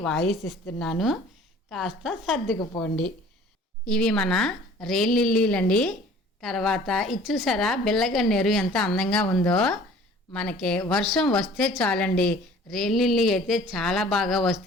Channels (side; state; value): both; normal; correlation 0.49